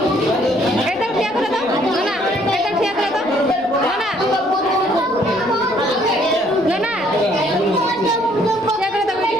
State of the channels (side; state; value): right; noise; rumble, 26 dB below the sound